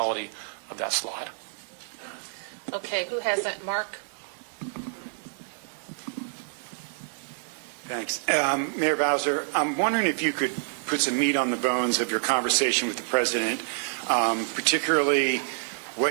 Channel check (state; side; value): silent; left; 60 dB below the other